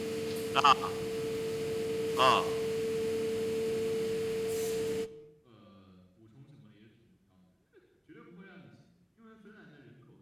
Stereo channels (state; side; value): identical; both; correlation 1.00